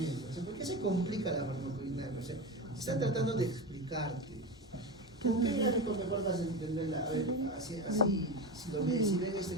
O sea, ¿por qué se complica la farmacodinámica? O sea, están tratando de explicarte. ¿Con qué gráfico mejor vas a entenderla? A ver, así si ven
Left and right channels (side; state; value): both; normal; correlation 0.22